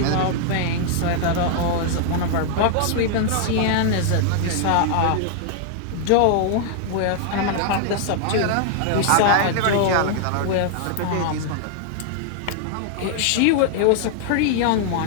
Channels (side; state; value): both; different; correlation 0.00